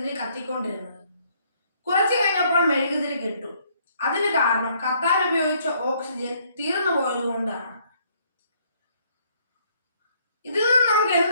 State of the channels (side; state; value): both; inverted; correlation -0.66